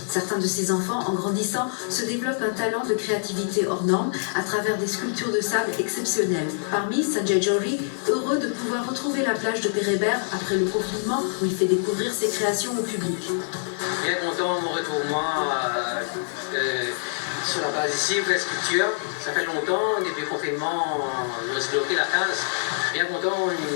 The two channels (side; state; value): right; silent; digital silence